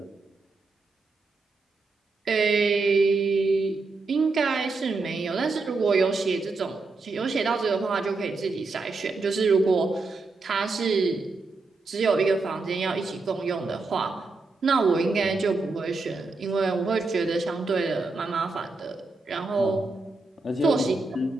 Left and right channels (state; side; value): quieter; left; 3.7 dB